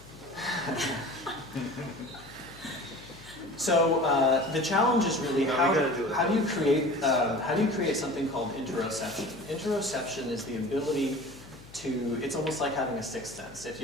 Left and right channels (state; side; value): noise; left; hum, 21 dB below the sound